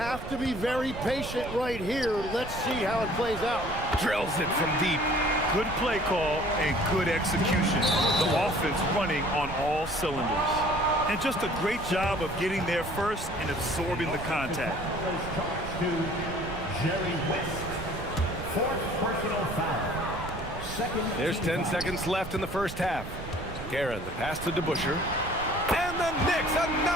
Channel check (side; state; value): right; noise; rumble, 10 dB below the sound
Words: to be very patient right here. Let's see how it plays out. Drills it from deep. Good play call and good execution. The offense running on all cylinders. And just a great job of getting there first and absorbing the contact. There's 10 seconds left in the first half. Guerin, the pass to DeBusschere. And the Knicks,